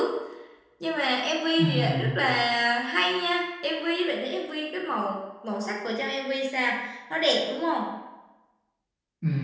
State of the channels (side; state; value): both; identical; correlation 1.00